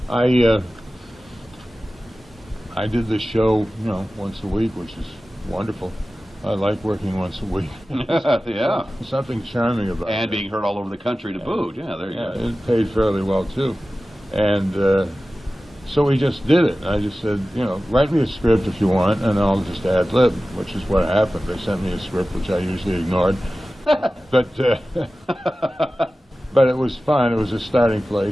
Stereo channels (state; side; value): normal; both; correlation 0.96